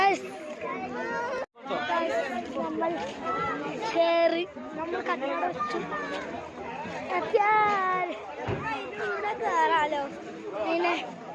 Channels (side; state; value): both; identical; correlation 1.00